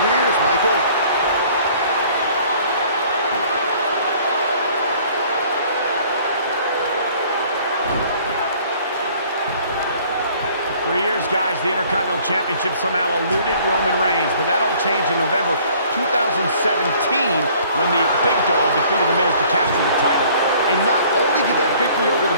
Michael. For years, guys, the Intercontinental Championship somehow eluded Roman Reigns, but that all changed in November 2017 when the Big Dog defeated The Miz to capture the title. And not only did that victory over The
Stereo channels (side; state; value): both; inverted; correlation -0.55